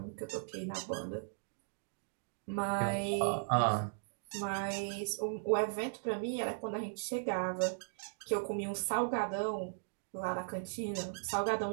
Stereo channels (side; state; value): left; silent; digital silence